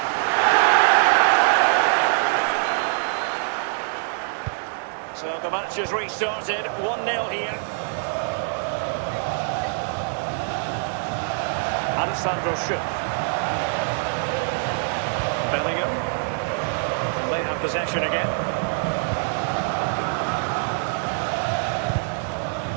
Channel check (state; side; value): silent; left; 57 dB below the other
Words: So the match has restarted, 1-0 here. Alessandro Schuff. Bellingham. And they have possession again.